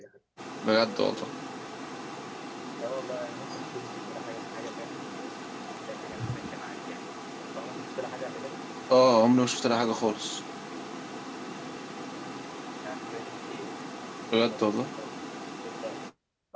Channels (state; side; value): identical; both; correlation 1.00